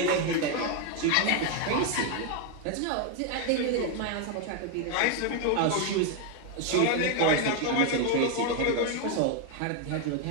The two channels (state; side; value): different; both; correlation 0.01